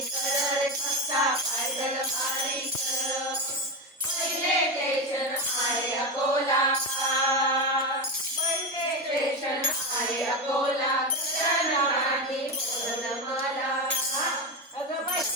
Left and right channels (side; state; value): both; normal; correlation 0.15